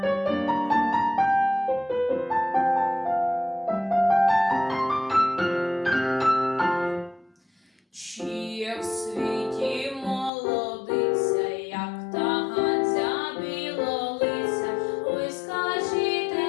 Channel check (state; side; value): drops out; right; at 10.3 s